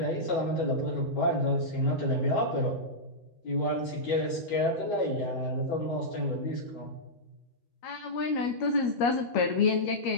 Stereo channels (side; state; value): right; late; 13 ms